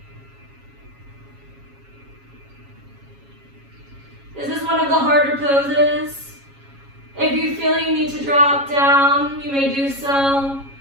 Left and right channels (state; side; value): late; left; 7.3 ms